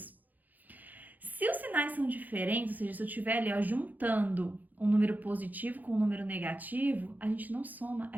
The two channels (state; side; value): late; left; 0.083 ms